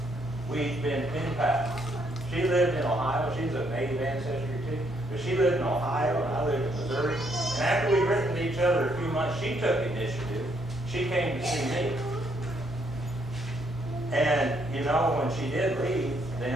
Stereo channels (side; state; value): both; normal; correlation 0.72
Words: We'd been pen pals. She lived in Ohio. She's of Native ancestry too. But she lived in Ohio and I lived in Missouri. And after we'd written to each other a few months, she took initiative. She came to see me. And, when she did leave,